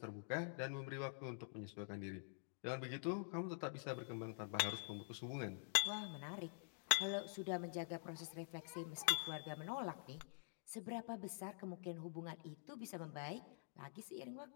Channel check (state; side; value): silent; right; digital silence